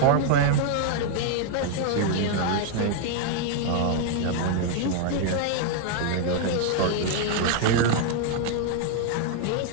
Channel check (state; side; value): different; both; correlation 0.00